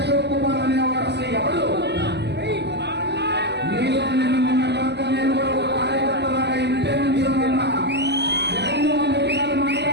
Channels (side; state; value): left; late; 0.50 ms